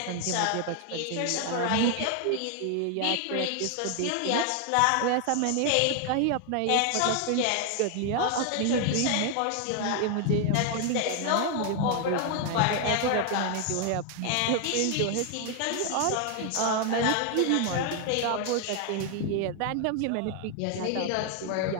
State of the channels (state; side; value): different; both; correlation 0.00